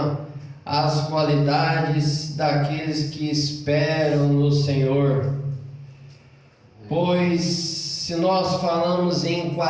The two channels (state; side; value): identical; both; correlation 1.00